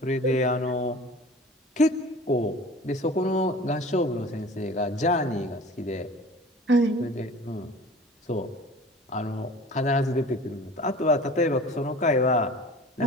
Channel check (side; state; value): both; normal; correlation 0.42